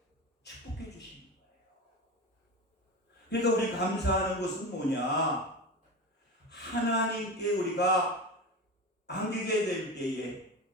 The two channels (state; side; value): normal; both; correlation 0.25